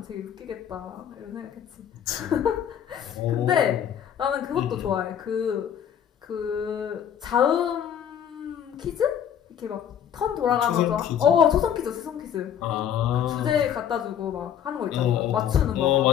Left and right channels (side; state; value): right; quieter; 9.2 dB